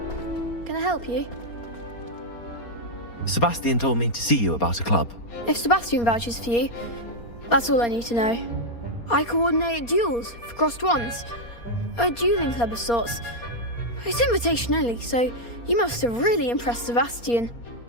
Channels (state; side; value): late; right; 4.3 ms